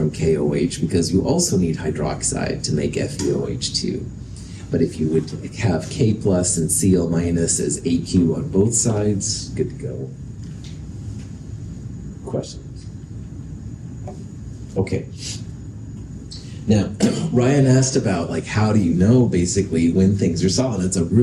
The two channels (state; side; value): identical; both; correlation 1.00